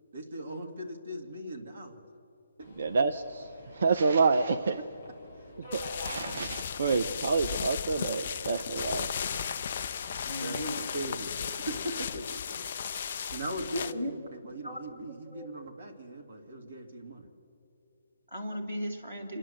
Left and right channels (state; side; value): inverted; both; correlation -0.76